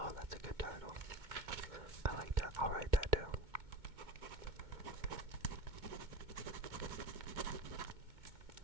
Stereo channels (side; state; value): left; late; 2.2 ms